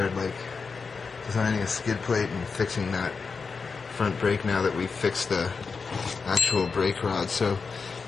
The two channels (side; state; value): right; quieter; 4.9 dB